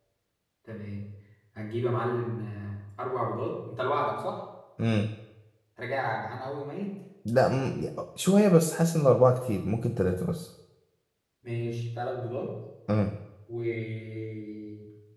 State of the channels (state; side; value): identical; both; correlation 1.00